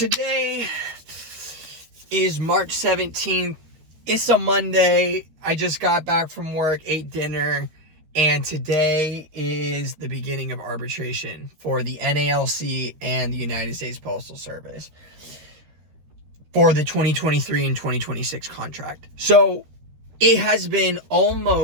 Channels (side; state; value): left; late; 13 ms